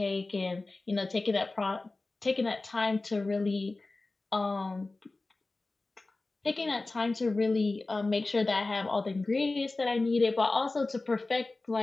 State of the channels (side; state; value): right; quieter; 3.3 dB